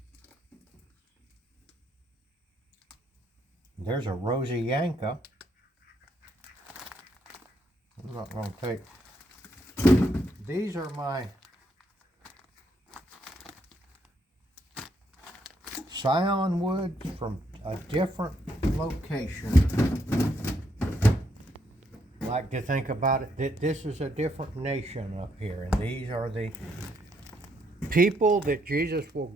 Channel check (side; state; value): both; normal; correlation 0.74